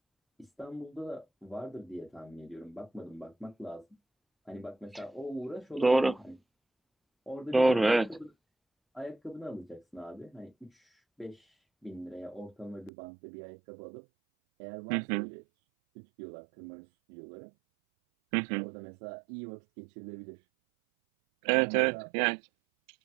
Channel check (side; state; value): left; drops out; at 12.9 s